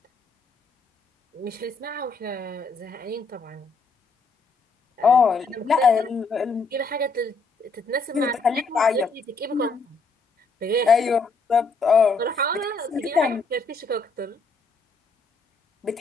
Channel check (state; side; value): quieter; right; 3.8 dB